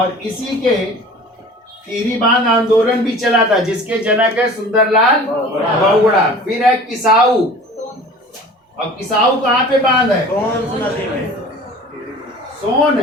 इसी के टिहरी बांध आंदोलन भी चला था जिसके जनक है सुंदरलाल बहुगुणा। फिर है किसाऊ, और किसाऊ कहाँ पे बांध है? सोन।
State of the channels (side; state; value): both; normal; correlation 0.43